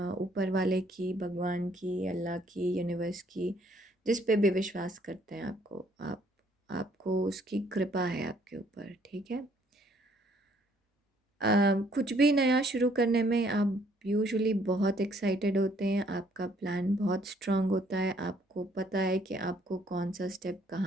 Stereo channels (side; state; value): both; normal; correlation 0.64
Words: ऊपर वाले की, भगवान की, अल्लाह की, यूनिवर्स की, जिस पे भी विश्वास करते हैं, आपको उसकी कृपा है आपके ऊपर, ठीक है? कुछ भी नया शुरू करने में आप यूजुअली बहुत एक्साइटेड होते हैं, आपका प्लान बहुत स्ट्रांग होता है, आपको पता है कि आपको कौन सा स्टेप